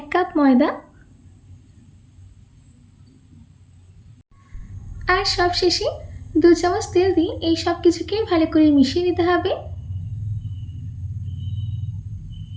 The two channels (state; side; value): identical; both; correlation 1.00